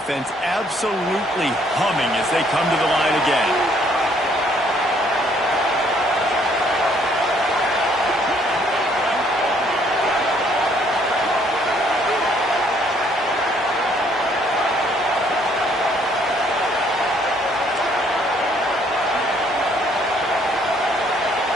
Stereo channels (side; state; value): both; normal; correlation 0.65